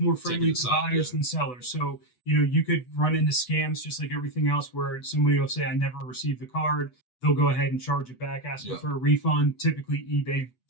friendly to buyers than sellers. So you could run into scams just like everything else, where somebody will say, "I never received the card." They'll go ahead and charge it back, asking for a refund. Typically, eBay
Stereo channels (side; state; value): right; late; 8.1 ms